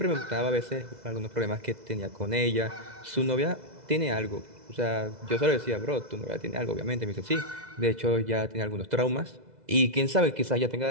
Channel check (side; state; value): left; late; 2.0 ms